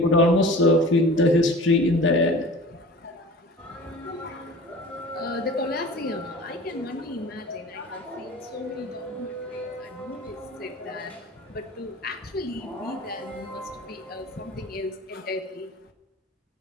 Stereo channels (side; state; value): both; normal; correlation 0.40